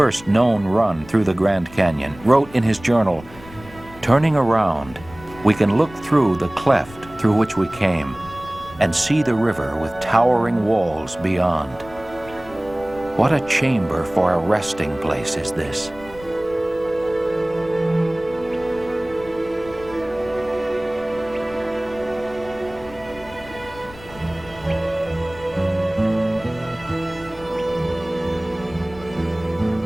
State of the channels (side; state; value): left; noise; rumble, 19 dB below the sound